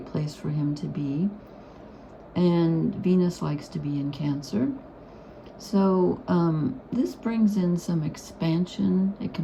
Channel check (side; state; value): both; identical; correlation 1.00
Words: place for him to be. And Venus likes to be in Cancer. So this brings in some expansion. It